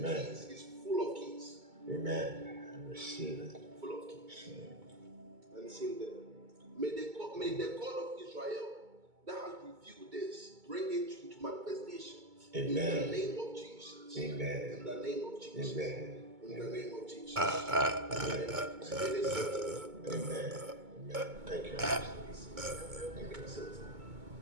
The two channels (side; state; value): left; late; 2.2 ms